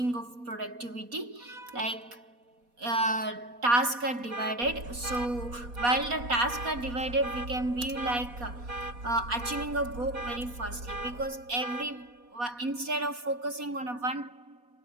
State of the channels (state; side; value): late; left; 4.2 ms